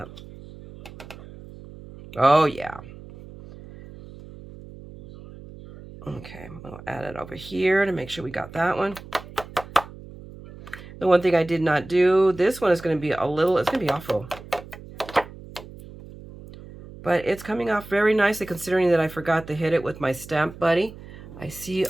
Oh, yeah. Okay, we'll add it over here to make sure we got that one. The one thing I did not do, this one is going to be a little, it's going to be awful. But it's coming off very nicely considering that I forgot to hit it with my Stamp Buddy. I see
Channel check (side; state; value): right; noise; hum, 17 dB below the sound